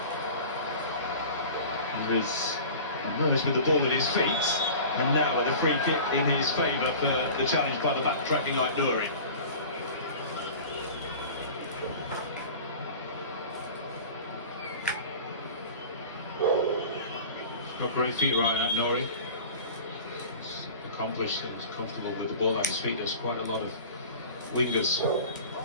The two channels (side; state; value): both; inverted; correlation -0.39